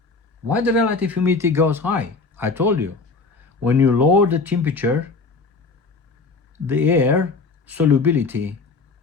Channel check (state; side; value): quieter; right; 4.2 dB